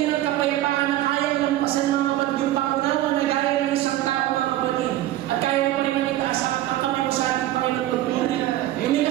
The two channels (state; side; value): quieter; left; 14.3 dB